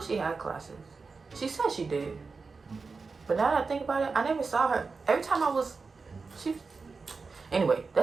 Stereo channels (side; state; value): left; quieter; 4.5 dB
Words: she had classes. She said she did. But now that I think about it, I never saw her. Every time anyway,